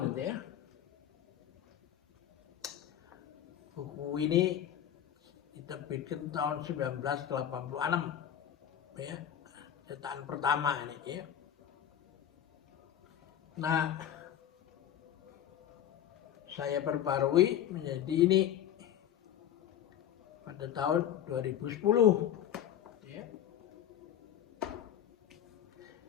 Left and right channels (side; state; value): right; quieter; 10.3 dB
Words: gitu ya. Buku ini diterbitkan tahun 1986 ya, cetakan pertama ini ya. Nah, saya perbarui menjadi ini pada tahun 2010 ya.